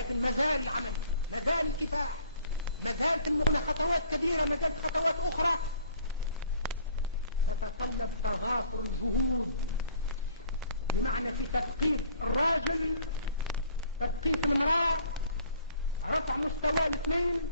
مازال العمل، مازال الكفاح، مازالت المغنى خطوات كبيرة، مازالت خطوات أخرى تتطلب تضافر الجهود، بمعنى في تثقيف الراجل، تثقيف المرأة، رفع مستوى الاثنين،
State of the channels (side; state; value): both; inverted; correlation -0.56